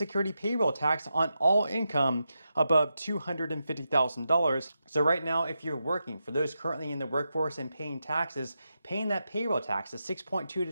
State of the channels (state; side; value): inverted; both; correlation -0.88